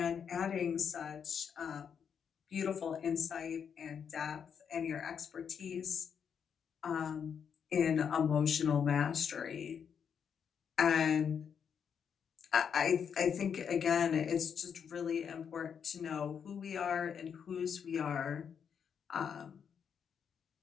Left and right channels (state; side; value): quieter; right; 7.3 dB